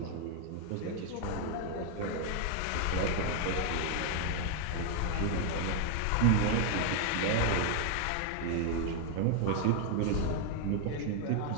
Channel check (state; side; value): different; both; correlation 0.00